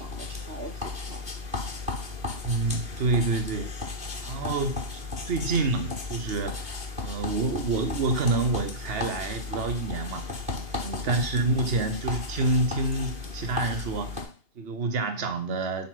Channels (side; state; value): left; late; 2.8 ms